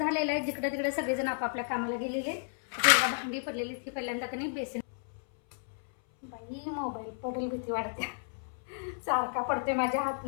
आहे. जिकडे तिकडे सगळेजण आपापल्या कामाला गेलेले. भांडी पडलेली ती पहिल्यांदा कधी बेसिन बाई मोबाईल पडेल भीती वाटते. सारखा पडते माझ्या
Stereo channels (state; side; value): silent; right; 56 dB below the other